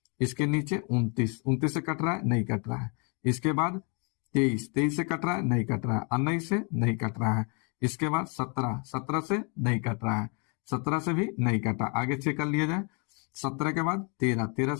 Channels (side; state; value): right; quieter; 35.5 dB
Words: इसके नीचे 29 से कट रहा है, नहीं कट रहा है। इसके बाद 23 से कट रहा है, नहीं कट रहा है। 19 से नहीं कट रहा है। इसके बाद 17 से नहीं कट रहा है, 17 से भी नहीं कटा। आगे चेक कर लिया जाए, 17 के बाद 13